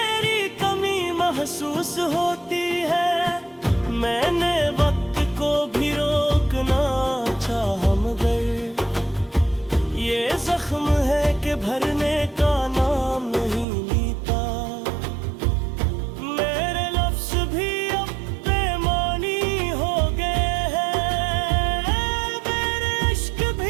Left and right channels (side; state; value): left; drops out; at 13.7 s